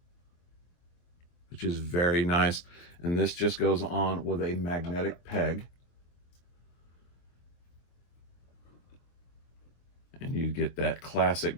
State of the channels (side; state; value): right; late; 23 ms